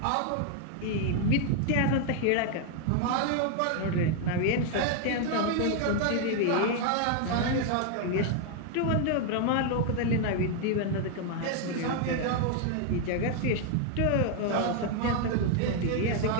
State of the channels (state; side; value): different; both; correlation 0.00